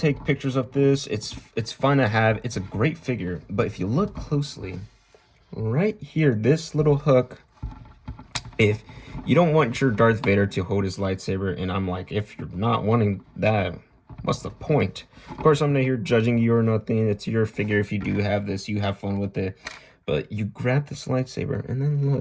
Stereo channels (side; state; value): both; identical; correlation 1.00